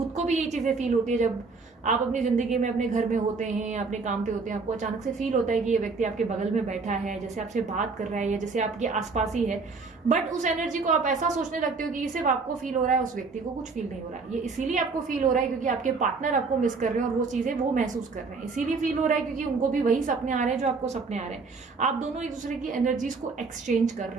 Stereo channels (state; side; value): quieter; left; 4.4 dB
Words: को भी ये चीजें फील होती है जब आप अपनी जिंदगी में अपने घर में होते हैं या अपने काम पे होते हैं, आपको अचानक से फील होता है कि ये व्यक्ति आपके बगल में बैठा है, जैसे आपसे बात कर रहा है या जैसे आपके आसपास ही है। बट उस एनर्जी को आप ऐसा सोचने लगते हो कि ये सिर्फ आपको फील हो रहा है, उस व्यक्ति को कुछ फील नहीं हो रहा है। ये इसीलिए आपको फील हो रहा है क्योंकि आपके पार्टनर आपको मिस कर रहे हैं और वो चीजें वो महसूस कर रहे हैं। इसीलिए फील हो रहा है क्योंकि उनको भी वही सपने आ रहे हैं जो आपको सपने आ रहे हैं। आप दोनों एक दूसरे की एनर्जीज को एक्सचेंज कर